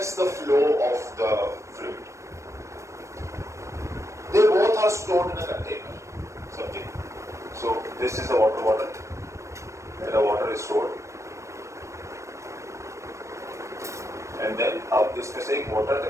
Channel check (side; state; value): left; late; 0.15 ms